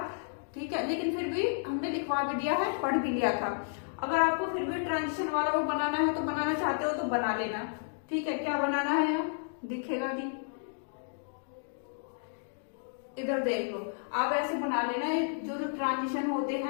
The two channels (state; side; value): silent; right; digital silence